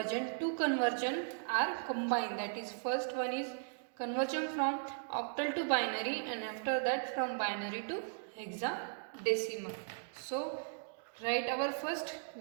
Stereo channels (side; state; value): left; silent; digital silence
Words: two conversions are combined, that is first one is conversion from octal to binary and after that from binary to hexadecimal. So write our first